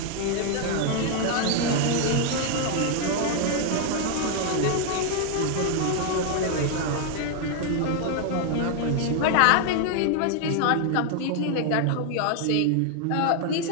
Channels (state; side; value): different; both; correlation 0.00